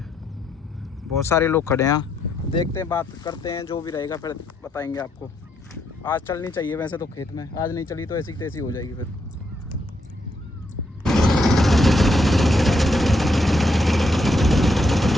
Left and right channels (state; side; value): normal; both; correlation 0.77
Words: बहुत सारे लोग खड़े हैं। देखते हैं बात करते हैं, जो भी रहेगा फिर बताएंगे आपको। आज चलनी चाहिए वैसे तो खेत में, आज नहीं चली तो ऐसी तैसी हो जाएगी फिर।